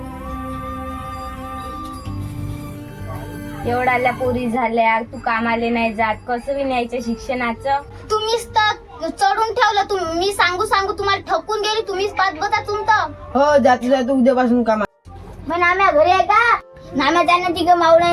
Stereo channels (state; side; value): identical; both; correlation 1.00